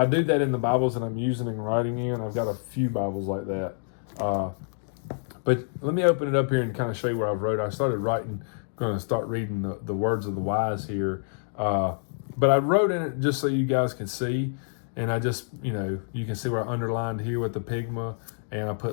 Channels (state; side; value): silent; right; digital silence